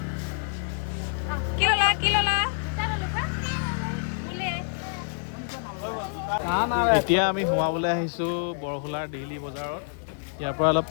কি ল'লা এতিয়া আমি সোমাবলৈ আহিছোঁ বৰহোলাৰ ডেইলি বজাৰত ইয়াৰ পৰা অলপ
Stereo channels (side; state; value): right; silent; 56 dB below the other